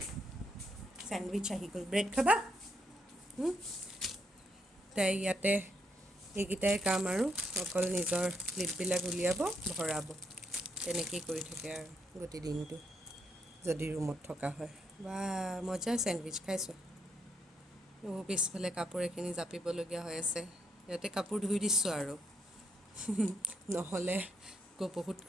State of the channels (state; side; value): normal; both; correlation 0.77